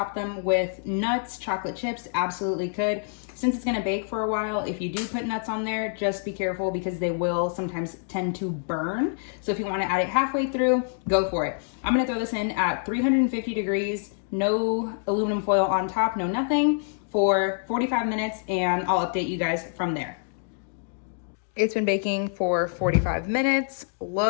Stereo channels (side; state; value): right; silent; digital silence